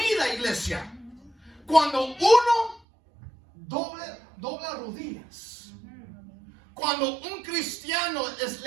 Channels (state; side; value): drops out; left; at 2.8 s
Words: iglesia, cuando uno dobla rodillas. Cuando un cristiano